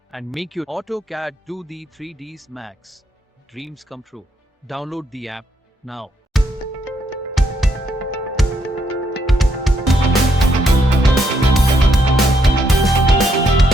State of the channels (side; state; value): both; normal; correlation 0.75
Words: and make your AutoCAD 2D 3Ds Max dreams come true. Download the app now.